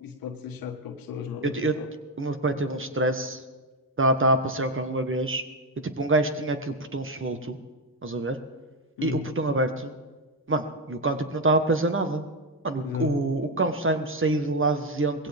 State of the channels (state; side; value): normal; both; correlation 0.08